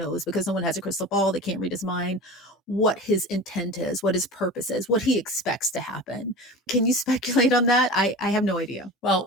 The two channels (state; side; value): normal; both; correlation 0.34